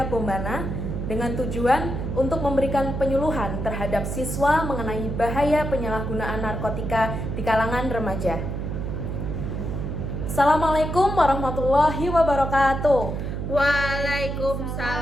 Bombana dengan tujuan untuk memberikan penyuluhan terhadap siswa mengenai bahaya penyalahgunaan narkotika di kalangan remaja. Assalamualaikum warahmatullahi wabarakatuh.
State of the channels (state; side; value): noise; right; hum, 4 dB below the sound